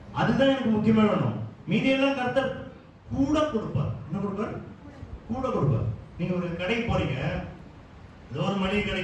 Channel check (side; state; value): both; identical; correlation 1.00